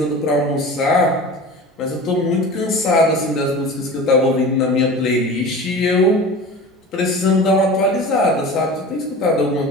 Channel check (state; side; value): normal; both; correlation 0.35